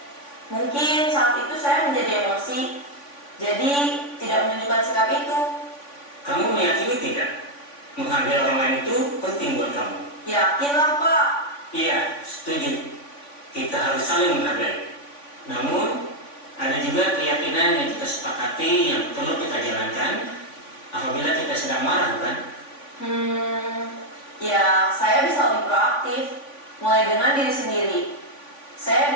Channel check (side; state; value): right; late; 3.5 ms